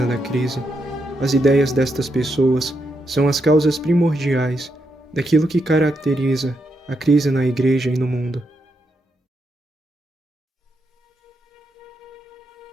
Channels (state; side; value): normal; both; correlation 0.82